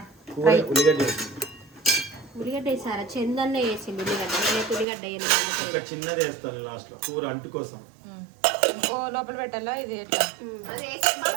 కూర ఉల్లిగడ్డ వేసింది. ఉల్లిగడ్డ వేసారా? చందన్న వేసింది ఉల్లిగడ్డ. నేనైతే ఉల్లిగడ్డ ఒక చిన్నది వేస్తాను లాస్ట్ లో కూర అంటు కోసం. ఓ లోపల పెట్టాలా ఇది ఎట్లా? అది వేసి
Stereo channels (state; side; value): drops out; left; at 4.9 s